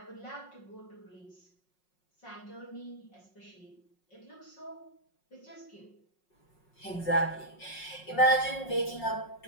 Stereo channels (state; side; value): late; right; 5.5 ms